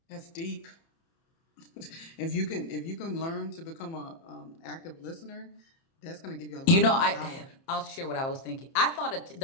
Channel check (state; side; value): late; right; 30 ms